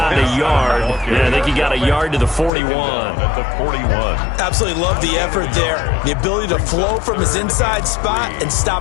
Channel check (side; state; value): right; drops out; at 2.5 s